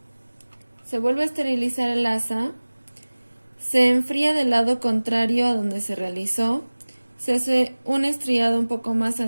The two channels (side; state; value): both; inverted; correlation -1.00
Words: se vuelve a esterilizar el asa, se enfría del lado contrario a donde se realizó, se hace un estriado un poco más